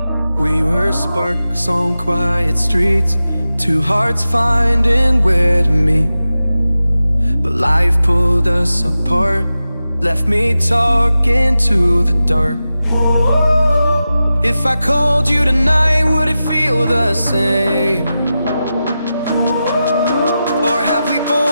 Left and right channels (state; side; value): inverted; both; correlation -0.93